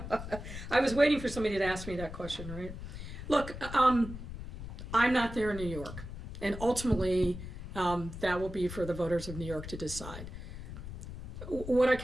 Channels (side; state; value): left; noise; rumble, 10 dB below the sound